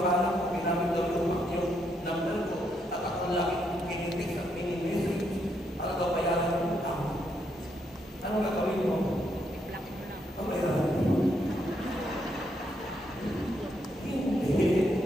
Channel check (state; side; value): normal; both; correlation 0.77